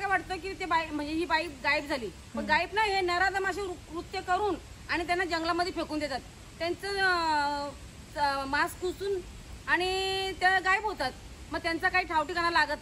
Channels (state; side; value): identical; both; correlation 1.00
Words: वाटतं की ते बाई म्हणजे ही बाई गायब झाली, पण गायब नाही, हे नराधमाशी कृत्य करून आणि त्यांना जंगलामध्ये फेकून देतात. त्यांचं मास्क पुसून आणि त्या गायब होतात. मग त्यांचा काही ठावठिकाणा